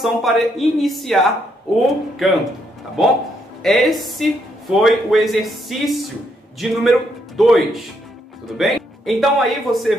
para iniciar o canto, tá bom? Esse foi o exercício de número 2, tudo bem? Então aí você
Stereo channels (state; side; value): normal; both; correlation 0.75